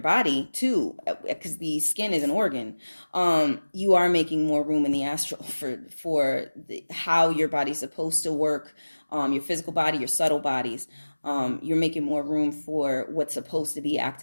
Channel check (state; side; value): inverted; both; correlation -1.00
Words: body too, because the skin is an organ, you are making more room in the astral for how your body's supposed to work, your physical body, your subtle bodies. You're making more room for what's supposed to be